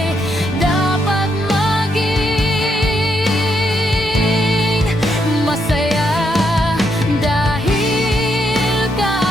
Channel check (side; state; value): both; normal; correlation 0.78